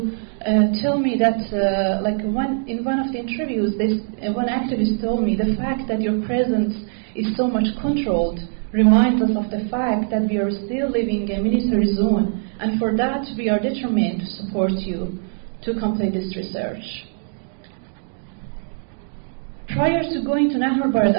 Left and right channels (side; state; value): left; silent; digital silence